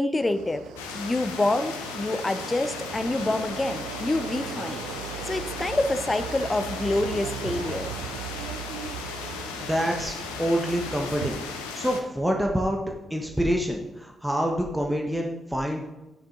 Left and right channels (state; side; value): normal; both; correlation 0.85